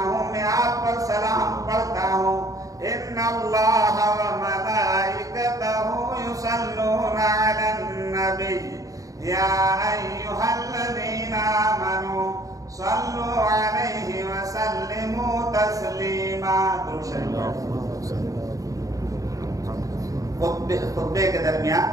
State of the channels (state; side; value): late; left; 0.16 ms